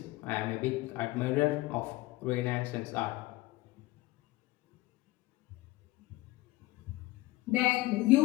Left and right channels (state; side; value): quieter; right; 19.2 dB